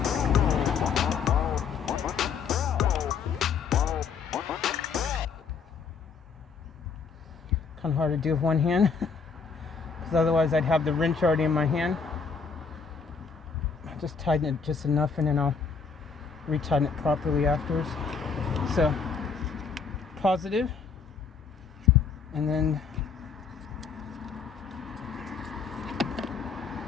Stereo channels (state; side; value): quieter; right; 5.6 dB